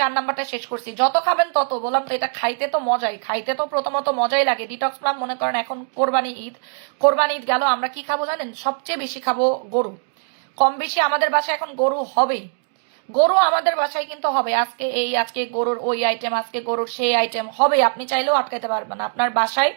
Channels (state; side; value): silent; left; 65 dB below the other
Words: নাম্বারটা শেষ করছি। যত খাবেন তত, বললাম তো এটা খাইতে তো মজাই, খাইতে তো প্রথমত মজাই লাগে। ডিটক্স প্লাম মনে করেন এখন কোরবানি ঈদ গেল, আমরা কি খাবো জানেন? সবচেয়ে বেশি খাবো গরু। কম বেশি আমাদের বাসায় এখন গরু হবেই, গরু আমাদের বাসায় কিন্তু হবে। আজকে গরুর ওই আইটেম, আজকে গরুর সেই আইটেম হবে। আপনি চাইলেও আটকাইতে পারবেন না আপনার বাসায়,